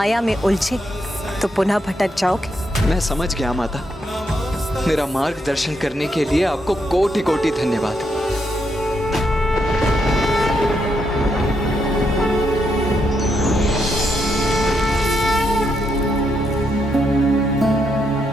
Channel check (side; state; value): both; normal; correlation 0.79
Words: में उलझे तो पुनः भटक जाओगे। मैं समझ गया माता, मेरा मार्गदर्शन करने के लिए आपको कोटि कोटि धन्यवाद।